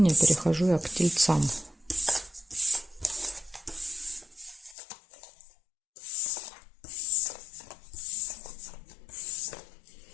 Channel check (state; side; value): drops out; right; at 4.8 s